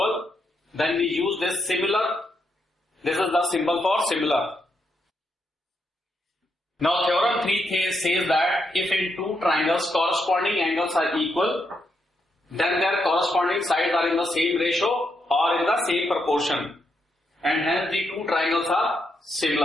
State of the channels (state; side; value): normal; both; correlation 0.80